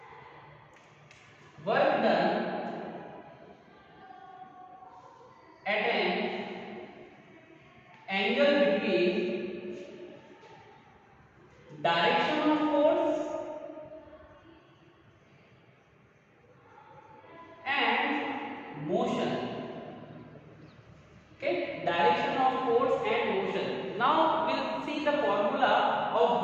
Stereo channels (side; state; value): both; identical; correlation 1.00